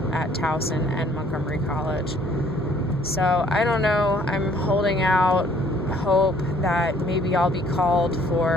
at Towson and Montgomery College. So I don't know. I'm holding out hope that maybe I'll be called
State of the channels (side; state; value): both; normal; correlation 0.60